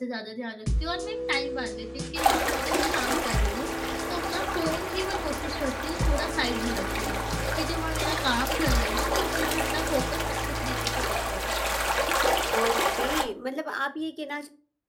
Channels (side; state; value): both; identical; correlation 1.00